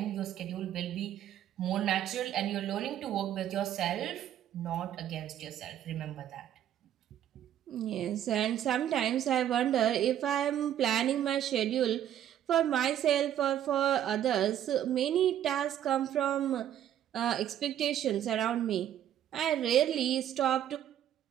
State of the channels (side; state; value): left; quieter; 10.9 dB